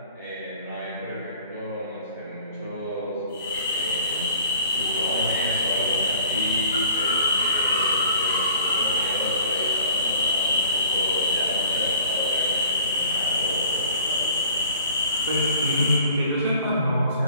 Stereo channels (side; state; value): both; inverted; correlation -0.47